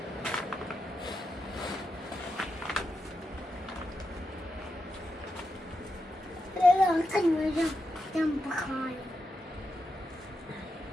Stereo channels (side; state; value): both; normal; correlation 0.87